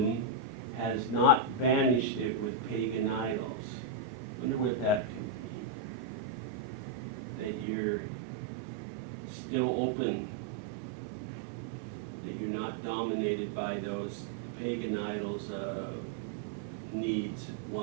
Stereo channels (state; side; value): drops out; left; at 7.7 s